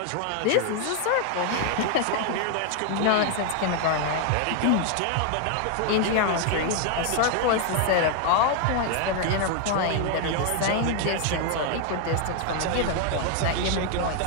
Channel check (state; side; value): different; both; correlation 0.00